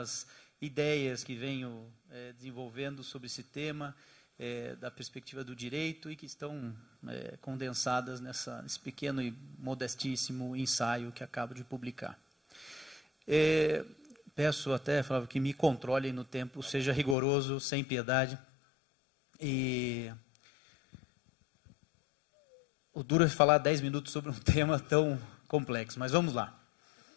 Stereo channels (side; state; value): right; drops out; at 17.2 s